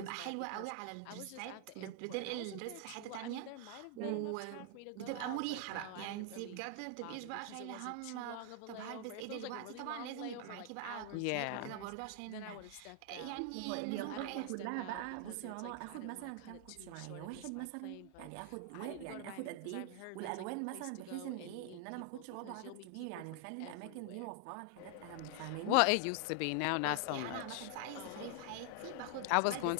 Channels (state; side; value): different; both; correlation 0.00